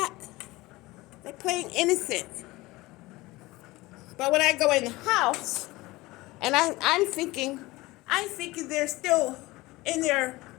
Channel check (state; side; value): quieter; right; 20.3 dB